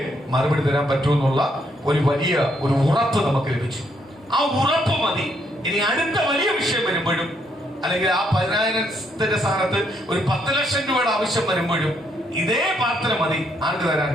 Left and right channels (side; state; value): both; normal; correlation 0.73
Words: മറുപടി തരാൻ പറ്റുമെന്നുള്ള ഒരു വലിയ ഒരു ഉറപ്പ് നമുക്ക് ലഭിച്ചു. ആ ഉറപ്പ് മതി ഇനി അടുത്ത വലിയ വിഷയം വരുമ്പോഴും, അല്ലെങ്കിൽ ആ 10,000ത്തിന്റെ സ്ഥാനത്ത് ഒരു 10 ലക്ഷം രൂപയുടെ ആവശ്യം വരുമ്പോഴും ഇതേ പ്രാർത്ഥന മതി ആർക്ക് തരാൻ?